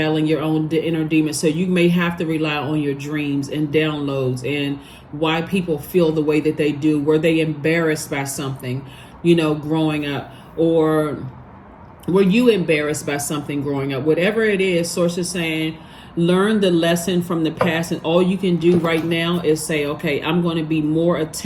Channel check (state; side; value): identical; both; correlation 1.00